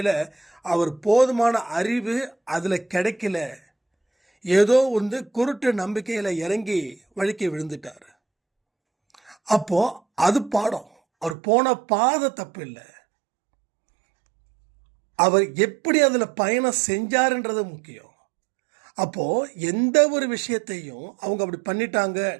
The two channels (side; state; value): left; drops out; at 11.4 s